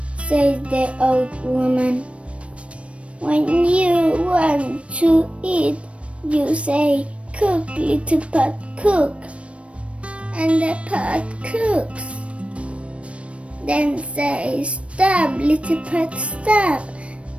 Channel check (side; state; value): left; late; 0.062 ms